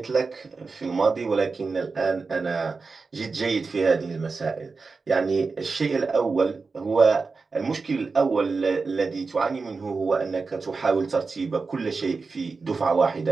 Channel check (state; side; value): quieter; left; 4.4 dB